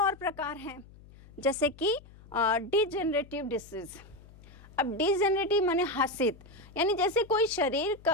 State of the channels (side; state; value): left; noise; hum, 22 dB below the sound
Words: प्रकार हैं, जैसे कि डिजेनरेटिव डिसीज। अब डिजेनरेटिव माने हसित, यानी जैसे कोई शरीर